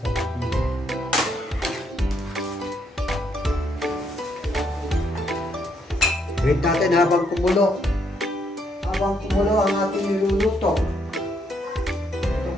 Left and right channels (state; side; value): normal; both; correlation 0.73